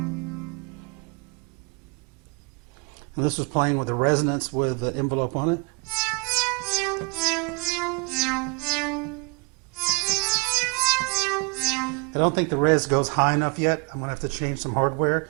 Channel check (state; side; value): quieter; left; 31.6 dB